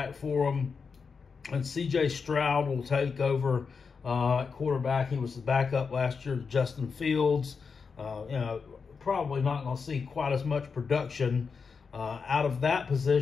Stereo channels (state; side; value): quieter; right; 5.4 dB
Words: for them, and C.J. Stroud will take over at quarterback. He was the backup last year to Justin Fields. Probably not going to see quite as much production out of that